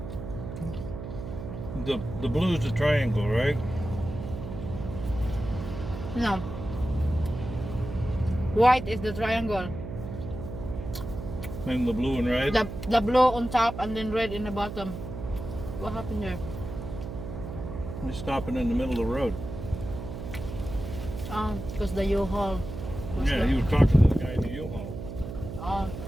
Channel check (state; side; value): noise; right; hum, 8 dB below the sound